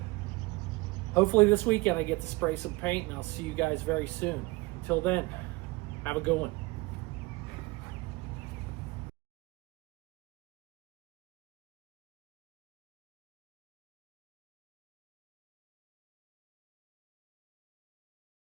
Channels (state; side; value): quieter; left; 23.1 dB